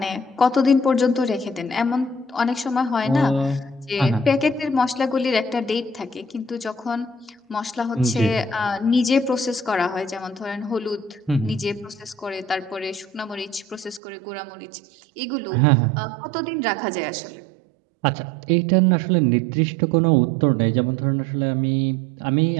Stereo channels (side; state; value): left; drops out; at 14.0 s